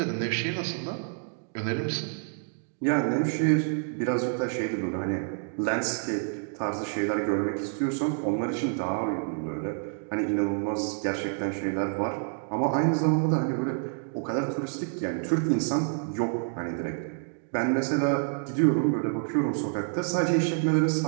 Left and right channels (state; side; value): silent; left; 59 dB below the other